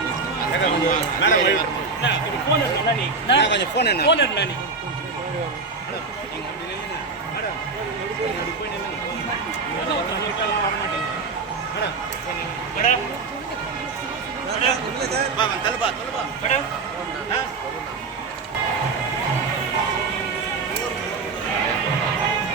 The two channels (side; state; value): left; quieter; 4.4 dB